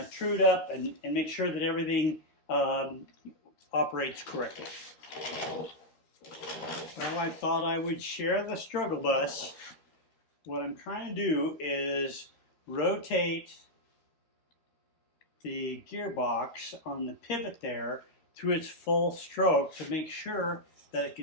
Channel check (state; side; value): late; right; 13 ms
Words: trued up and make sure that everything operates correctly. Well, I thought I would share the struggle bus. What I'm trying to do is rotate the gearbox on the pivot there through its full stroke to make sure that it